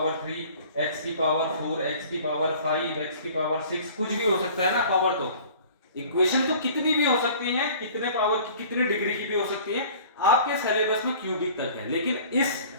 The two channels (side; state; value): both; inverted; correlation -0.47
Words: 3, x की पावर 4, x की पावर 5, x की पावर 6, कुछ भी हो सकता है ना पावर। तो इक्वेशन तो कितनी भी हो सकती है, कितने पावर की, कितनी डिग्री की भी हो सकती है, आपके सिलेबस में क्यूबिक तक है। लेकिन इस